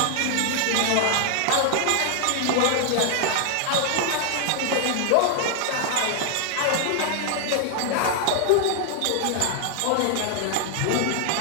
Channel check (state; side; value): different; both; correlation 0.00